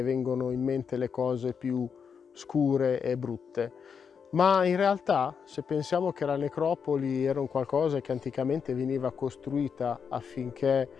vengono in mente le cose più scure e brutte. Ma in realtà, se pensiamo che la necropoli era un qualcosa che anticamente veniva costruita affinché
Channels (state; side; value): quieter; right; 6.6 dB